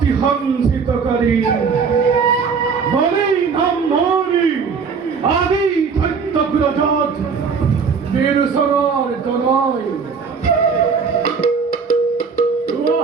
হংসিতকারী বলেই নাম মরি আদি ধৈত্যগ্রজাত বীরসরার জনয়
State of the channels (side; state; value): left; quieter; 5.6 dB